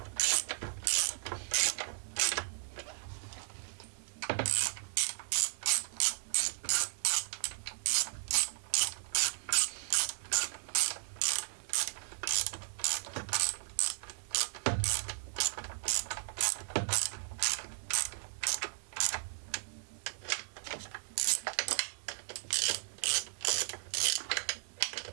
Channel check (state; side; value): silent; left; digital silence